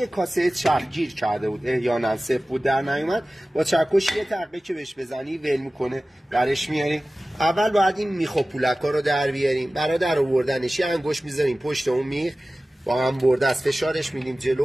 کاسه چرخ گیر کرده بود احیانا صفر بود در نیومد، با چکش یه تقه که بهش بزنی ول میکنه برش میاریم. اول باید این میخ و پولکا رو در بیاریم. برای در آوردنش یه انگشت میذاریم پشت اون میخ، با هم برده از فشارش میدیم جلو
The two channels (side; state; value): both; normal; correlation 0.97